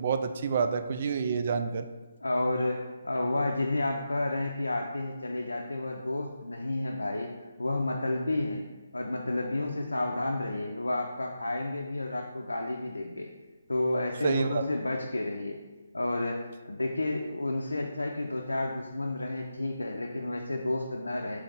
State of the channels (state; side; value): inverted; both; correlation -0.87